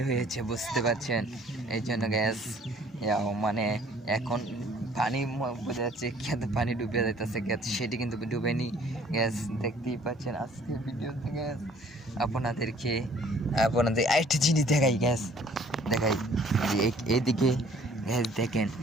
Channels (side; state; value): both; normal; correlation 0.56